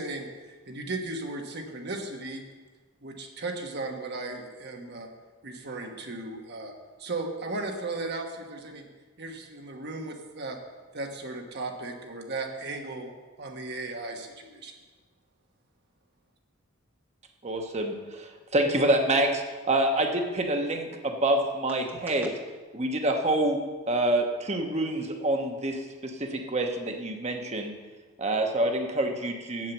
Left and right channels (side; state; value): both; normal; correlation 0.20